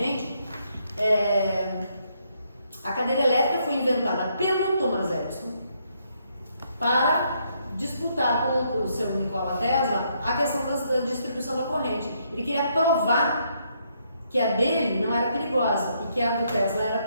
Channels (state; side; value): inverted; both; correlation -0.74